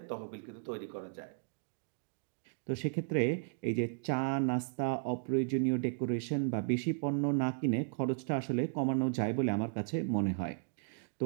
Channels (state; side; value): silent; left; digital silence